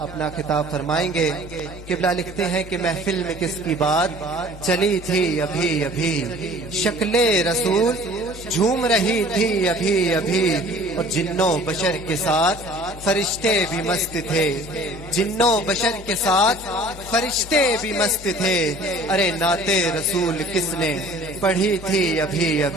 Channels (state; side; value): normal; both; correlation 0.49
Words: خطاب فرمائیں گے قبلہ لکھتے ہیں کہ محفل میں کس کی بات چلی تھی ابھی ابھی شکل رسول جھوم رہی تھی ابھی ابھی اور جنوں بشر کے ساتھ فرشتے بھی مست تھے جنوں بشر کے ساتھ فرشتے بھی مست تھے ارے نعت رسول کس نے پڑھی تھی ابھی